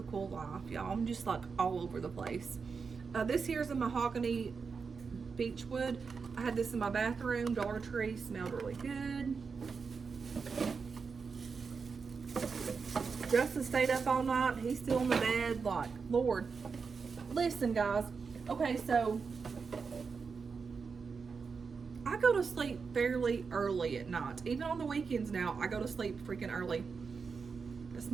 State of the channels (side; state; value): left; quieter; 5.3 dB